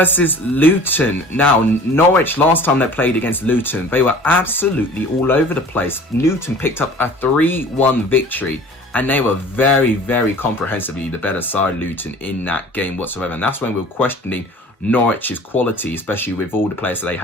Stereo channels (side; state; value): both; normal; correlation 0.45